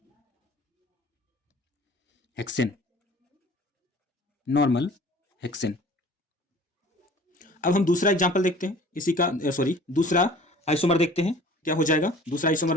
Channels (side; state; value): both; normal; correlation 0.47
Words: हेक्सेन, नॉर्मल हेक्सेन। अब हम दूसरा एग्जांपल देखते हैं, इसी का दूसरा आइसोमर देखते हैं क्या हो जाएगा। दूसरा आइसोमर